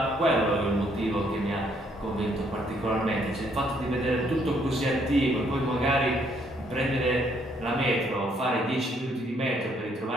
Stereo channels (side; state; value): both; normal; correlation 0.69